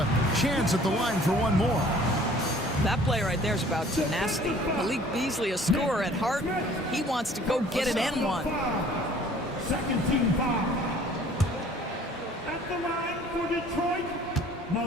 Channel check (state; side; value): normal; both; correlation 0.53